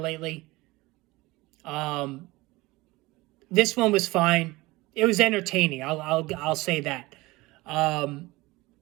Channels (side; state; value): left; quieter; 21.1 dB